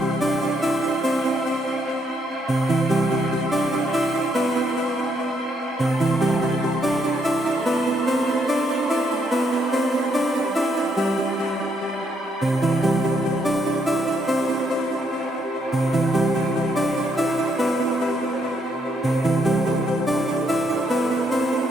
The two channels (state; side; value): normal; both; correlation 0.74